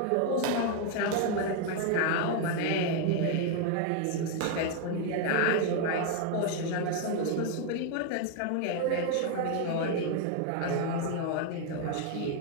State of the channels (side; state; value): both; different; correlation 0.01